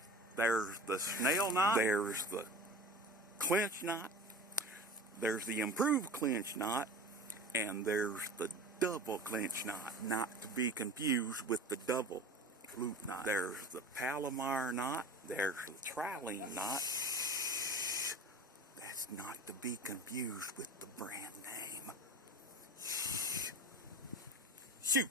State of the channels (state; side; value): normal; both; correlation 0.36